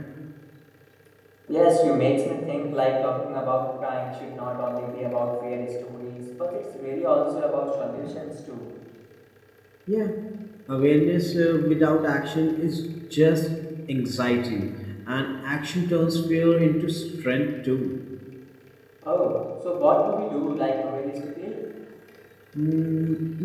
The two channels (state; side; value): identical; both; correlation 1.00